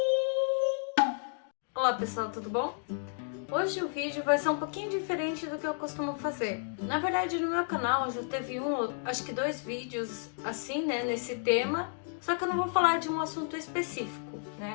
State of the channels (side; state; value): right; silent; 57 dB below the other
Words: Olá pessoal, tudo bom? Hoje o vídeo vai ser um pouquinho diferente do que eu costumo fazer. Na verdade, no meu canal já teve acho que 2 vídeos assim, né, nesse tema. Só que eu não vou falar de um assunto específico,